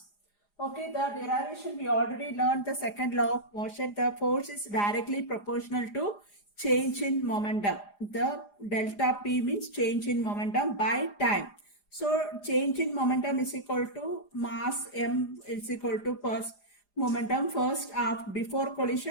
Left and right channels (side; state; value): right; late; 4.9 ms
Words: Okay, the derivation we already learned the second law of motion. The force is directly proportional to change in momentum. The delta P means change in momentum by time. So change in momentum is equal to mass m is equal to first momentum first before